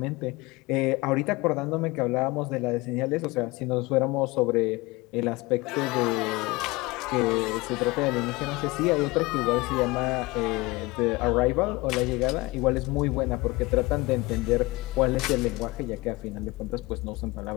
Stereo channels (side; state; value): right; quieter; 22.5 dB